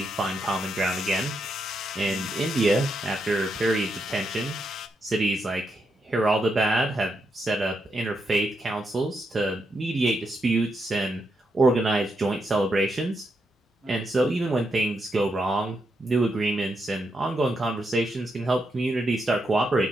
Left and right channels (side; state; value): both; normal; correlation 0.82